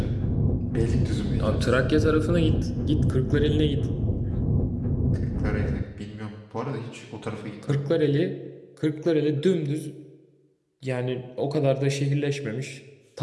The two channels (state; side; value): identical; both; correlation 1.00